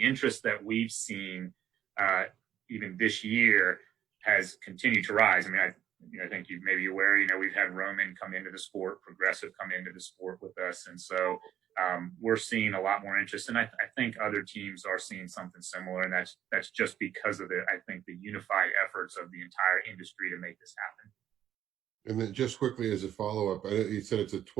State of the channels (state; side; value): quieter; left; 10.8 dB